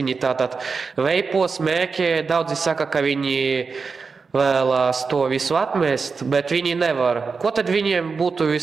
tātad veipo, smēķē, daudzi saka, ka viņi vēlās to visu atmest, bet viņi nevar. Ko tad viņiem būtu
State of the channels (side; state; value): left; quieter; 4.9 dB